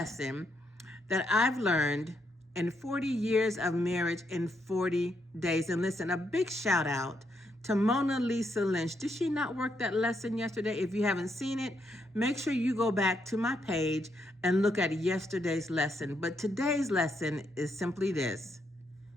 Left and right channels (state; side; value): normal; both; correlation 0.78